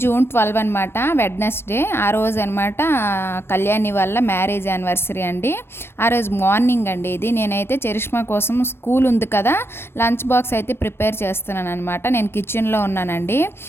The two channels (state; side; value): late; right; 0.12 ms